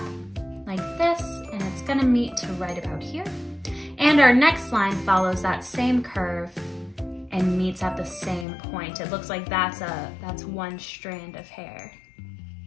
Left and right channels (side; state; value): right; drops out; at 8.5 s